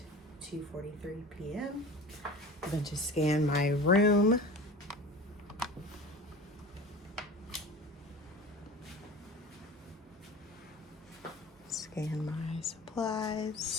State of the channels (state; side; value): normal; both; correlation 0.36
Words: 2:43 p.m. I'm going to scan my room. Scan my